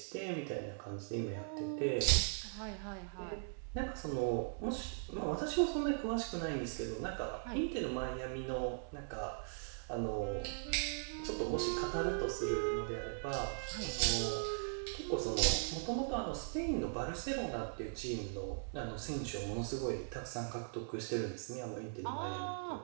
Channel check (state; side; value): silent; left; 51 dB below the other